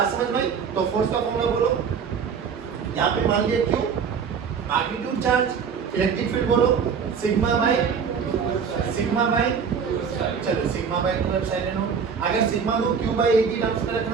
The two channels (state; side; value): quieter; left; 6.5 dB